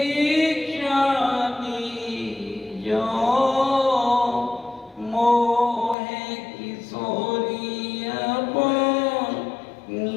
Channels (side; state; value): right; drops out; at 6.0 s